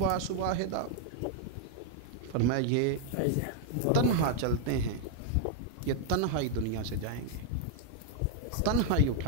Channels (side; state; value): both; different; correlation 0.00